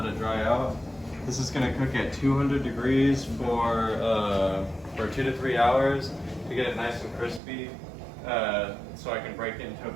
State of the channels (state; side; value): drops out; left; at 7.4 s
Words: it dry out. This is gonna cook at 200 degrees for 2 to 3 hours to get it nice and crispy, so I can break it into a